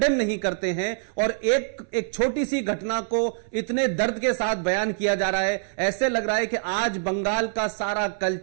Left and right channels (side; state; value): left; silent; 58 dB below the other